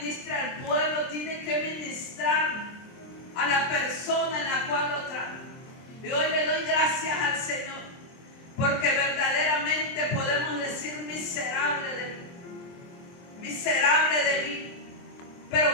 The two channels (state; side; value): late; right; 23 ms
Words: al pueblo, tiene que ministrar a la persona en la cual lo trae. Y hoy le doy gracias al Señor, porque verdaderamente podemos decir: miserable de mí, miserable de mí.